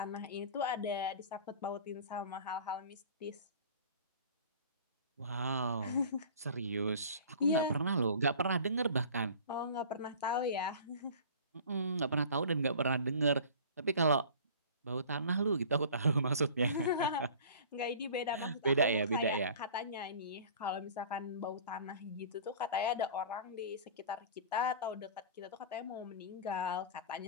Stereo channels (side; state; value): both; inverted; correlation -0.42